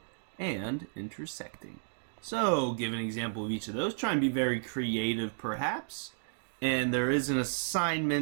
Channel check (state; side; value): silent; left; digital silence